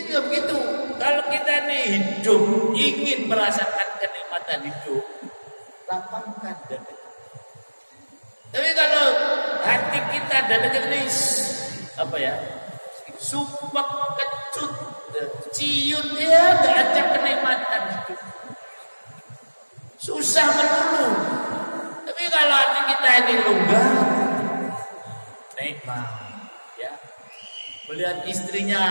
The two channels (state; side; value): inverted; both; correlation -1.00